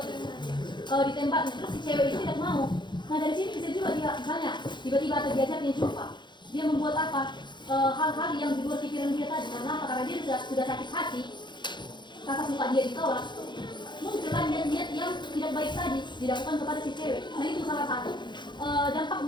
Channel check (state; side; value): late; right; 0.22 ms